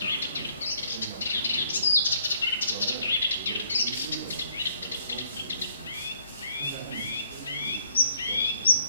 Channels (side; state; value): both; inverted; correlation -0.65